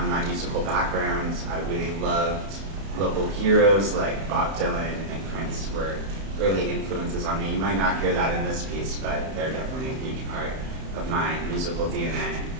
my musical background. I really loved local heroes like Bob Dylan and Prince were early influences on me. You might not hear that in this piece, but they're definitely a huge part of my musical DNA.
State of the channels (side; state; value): left; late; 31 ms